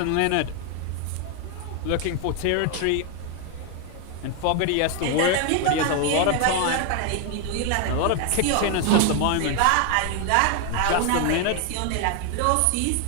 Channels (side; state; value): both; different; correlation 0.01